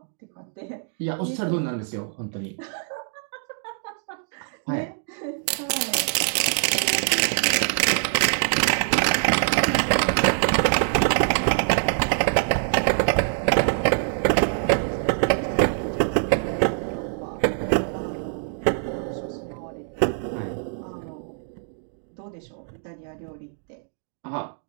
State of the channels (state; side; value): silent; left; digital silence